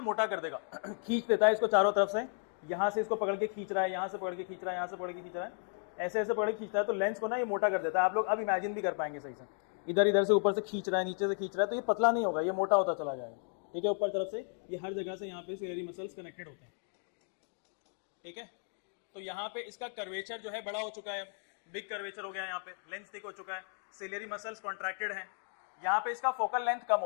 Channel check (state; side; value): silent; right; 55 dB below the other